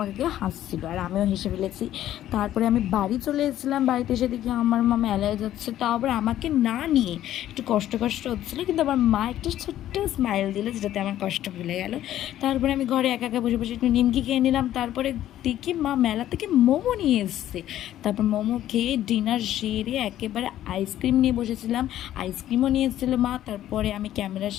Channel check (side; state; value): right; quieter; 12.6 dB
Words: হাসছিল, আর আমিও হেসে ফেলেছি। তারপরে আমি বাড়ি চলে এসেছিলাম, বাড়িতে এসে দেখি আমার মা মেলায় যাচ্ছে, তাও আবার আমাকে না নিয়ে। একটু কষ্ট হচ্ছিলো, কিন্তু আমার মা একটা ছোট্ট স্মাইল দিল, যেটাতে আমার কষ্ট ভুলে গেল। তারপরে আমি ঘরে একা বসে একটু নিমকি খেয়ে নিলাম। তারপরে দেখি মা মেলা থেকে মোমো নিয়ে এসছে। তারপর মোমো খেয়ে ডিনার সেরে একেবারে আইসক্রিম নিয়ে বসেছিলাম, আইসক্রিমও নিয়ে এসেছিলো মা। তারপরে আমি ক্যামেরার